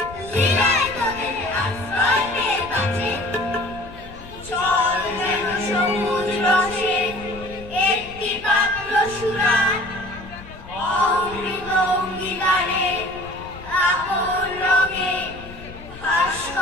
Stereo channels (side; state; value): left; noise; rumble, 16 dB below the sound